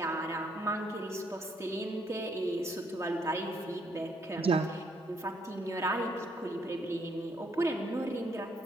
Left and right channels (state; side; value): normal; both; correlation 0.70